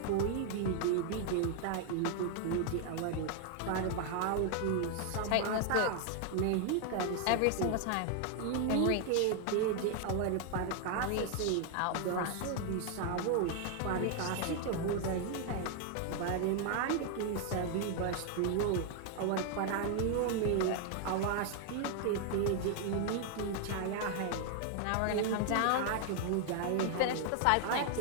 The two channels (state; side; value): different; both; correlation 0.00